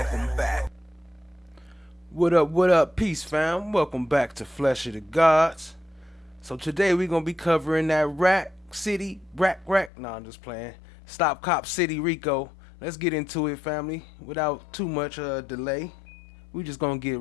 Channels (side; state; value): right; drops out; at 9.9 s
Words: What up, peace fam? Welcome back to Flesh of the Gods. So today we're gonna be covering that Rack City, no, I'm just playing. Stop Cop City, Rico. Let's get into it, family. Without too much delay, we just gonna get